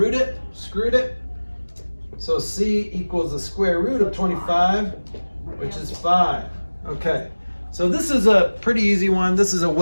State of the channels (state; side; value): inverted; both; correlation -1.00